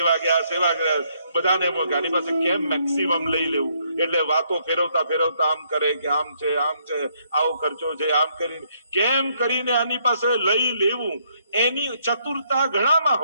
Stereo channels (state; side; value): inverted; both; correlation -0.71